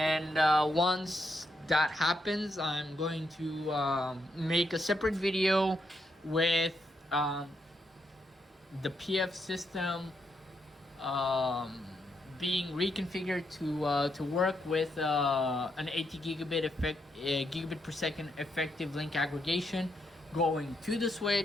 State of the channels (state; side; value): normal; both; correlation 0.79